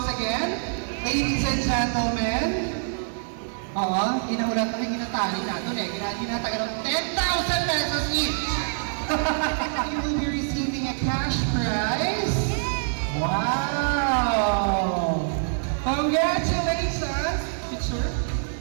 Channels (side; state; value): left; silent; 57 dB below the other